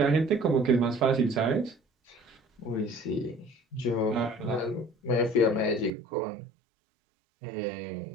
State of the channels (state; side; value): drops out; left; at 5.9 s